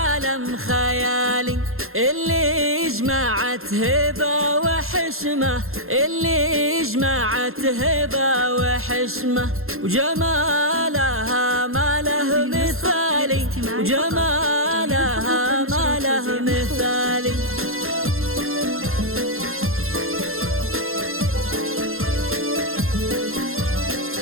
خيالي. اللي جمعت هبة وحشمة، اللي جمعت هبة وحشمة، وجمالها ما له مثالي، وجمالها ما له مثالي.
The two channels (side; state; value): left; late; 0.61 ms